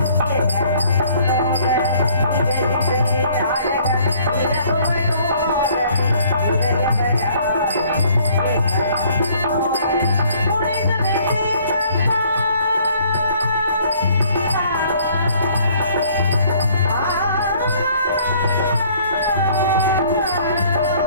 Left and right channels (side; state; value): both; inverted; correlation -0.59